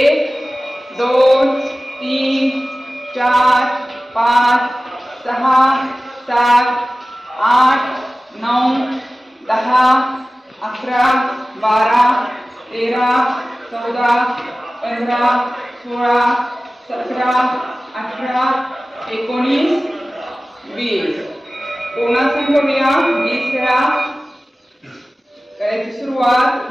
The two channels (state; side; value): normal; both; correlation 0.97